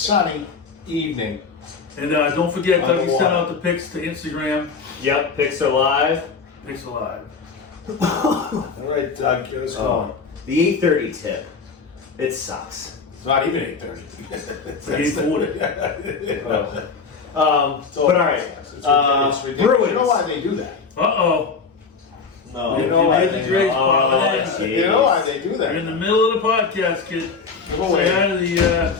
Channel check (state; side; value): quieter; right; 5.0 dB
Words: evening. And don't forget, Dougie Underwater. sent out the pics to Instagram. Yep, Picks are live. Pics alive. All right, Doug, get us going. The 8:30 tip. It sucks. It's not even 8:30. It's 8:40. But all right. It's ridiculous. Bruins. You know why they do that? Uh-oh. No. You know why Made the they- grades Oh, pop it in. jeez. You know why they do You're in the that? middle of the podcast, kid. Come away. Say hi to the,